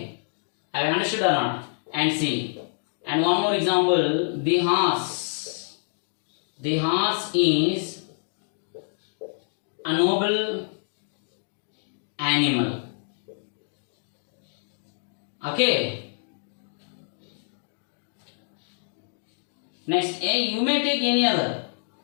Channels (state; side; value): silent; right; digital silence